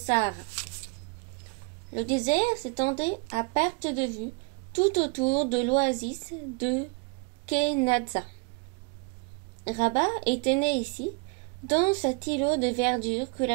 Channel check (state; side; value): quieter; left; 34.6 dB